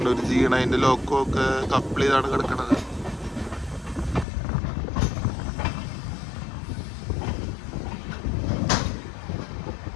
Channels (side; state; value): right; drops out; at 4.2 s